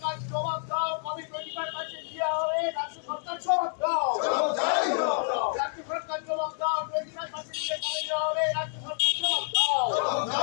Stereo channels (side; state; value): right; silent; digital silence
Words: জবাব দাও, কবে 25% দেওয়া হবে? রাজ্য সরকার জবাব দাও, রাজ্য সরকার জবাব দাও। 25% দিয়ে কবে দেওয়া হবে? রাজ্য সরকার জবাব দাও।